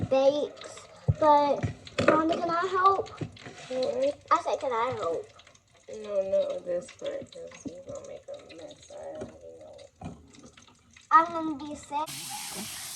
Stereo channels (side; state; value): both; identical; correlation 1.00